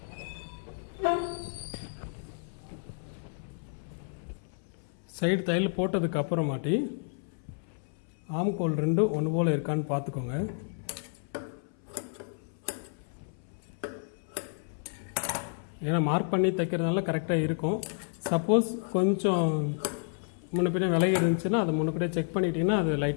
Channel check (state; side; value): silent; right; 57 dB below the other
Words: சைடு தையல் போட்டதுக்கு அப்புறமாட்டி ஆம்கோல் 2 ஒன்று போல் இருக்கான்னு பார்த்துக்கோங்க. ஏன்னா மார்க் பண்ணி தைக்கிறதுனால கரெக்டாக இருக்கும். சப்போஸ் கொஞ்சம் முன்ன பின்ன விலகி இருந்துச்சுன்னா அதை முன்னக்கூட செக் பண்ணிட்டீங்கன்னா அது